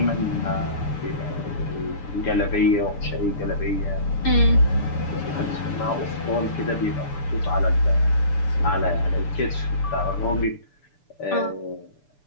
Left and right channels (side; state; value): right; late; 6.9 ms